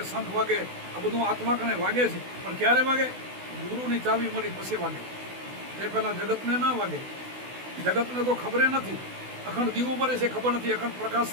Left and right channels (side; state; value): left; late; 16 ms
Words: શંખ વાગે, આ બધું આત્મા કણે વાગે છે. પણ ક્યારે વાગે? ગુરુની ચાવી મળી પછી વાગે. તે પહેલાં જગતને ના વાગે. જગતને તો ખબર નથી. અખંડ દીવો મરે છે ખબર નથી, અખંડ પ્રકાશ